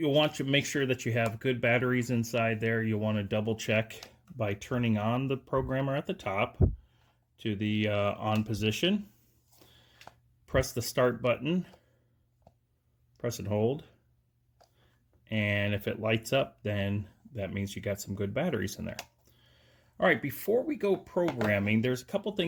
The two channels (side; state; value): both; identical; correlation 1.00